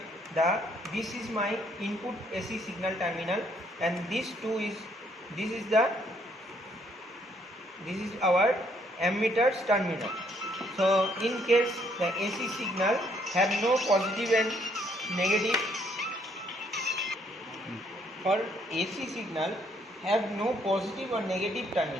this is my input AC signal terminal, and this is our ammeter's terminal. So in case the AC signal have no positive and negative, for AC signal have no positive or negative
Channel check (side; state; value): both; normal; correlation 0.68